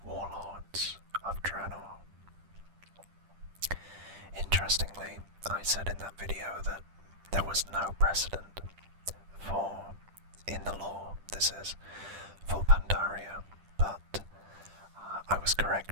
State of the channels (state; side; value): late; left; 10 ms